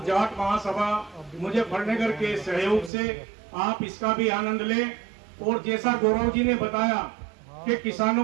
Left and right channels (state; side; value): drops out; left; at 2.9 s